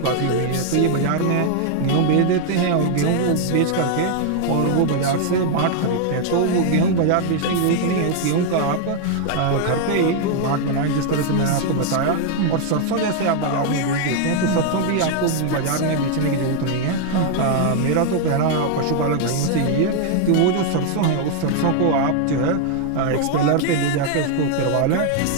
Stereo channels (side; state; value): both; different; correlation 0.00